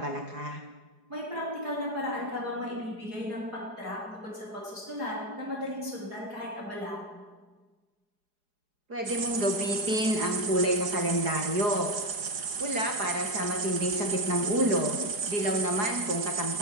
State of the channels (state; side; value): late; left; 4.8 ms